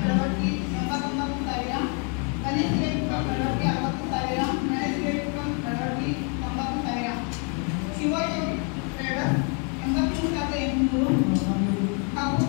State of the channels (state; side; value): quieter; right; 38.2 dB